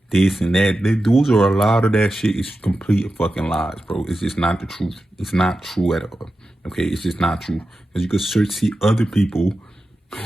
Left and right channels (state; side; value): normal; both; correlation 0.92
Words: this and that, those are a lot of that shit is complete fucking lies, bro. It's just not the truth. It's not true at all. Okay, it's just not true. Because you could see other people